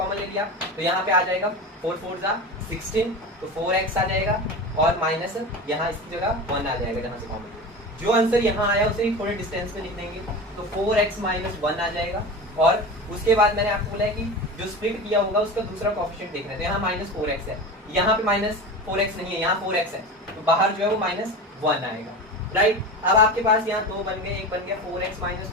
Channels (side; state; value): both; normal; correlation 0.29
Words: ले लिया तो यहाँ पे आ जाएगा 4 4 16, तो 4x आ जाएगा और माइनस यहाँ इसकी जगह 1 आ जाएगा जहाँ से कॉमन। जो आंसर यहाँ आया उसे थोड़े डिस्टेंस में लिख देंगे तो 4x माइनस 1 आ जाएगा और उसके बाद मैंने आपको बोला है कि जो स्प्लिट किया होगा उसका दूसरा कोएफिशिएंट देखना है। तो यहाँ -4x है, यहाँ पे -4x नहीं है, यहाँ 4x है, तो बाहर जो है वो -1 आएगा, राइट। अब आपके पास यहाँ 2 बन गए, एक बन गया 4x माइनस